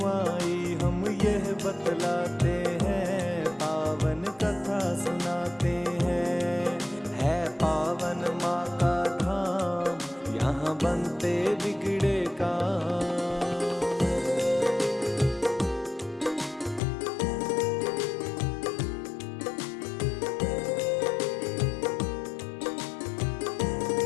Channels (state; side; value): drops out; right; at 16.8 s